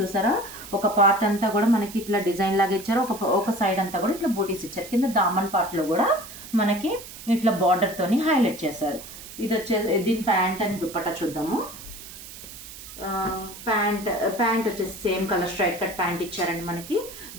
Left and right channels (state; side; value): noise; right; hiss, 14 dB below the sound